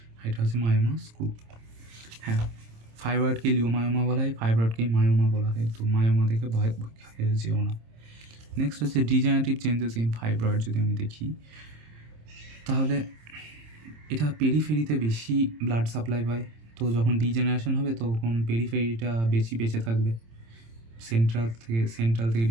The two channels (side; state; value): left; late; 26 ms